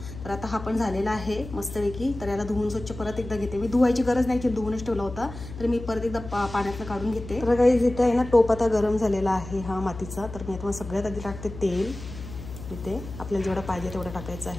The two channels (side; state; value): left; noise; hum, 12 dB below the sound